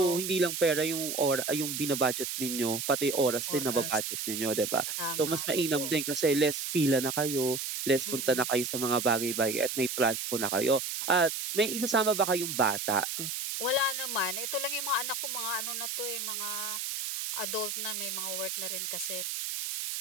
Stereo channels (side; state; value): right; noise; hiss, 4 dB below the sound